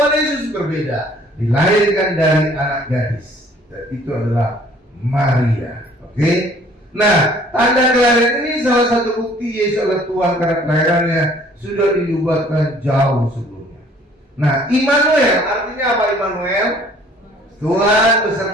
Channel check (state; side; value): normal; both; correlation 0.56